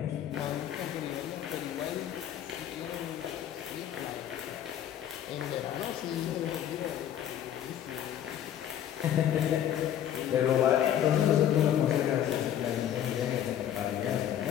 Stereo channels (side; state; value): right; quieter; 10.5 dB